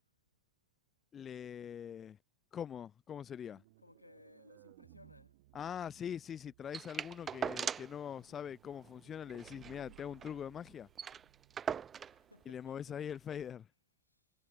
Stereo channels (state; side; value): normal; both; correlation 0.69